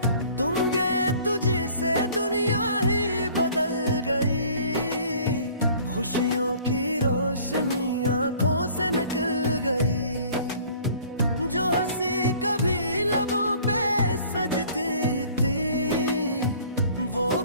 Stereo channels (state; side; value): inverted; both; correlation -0.52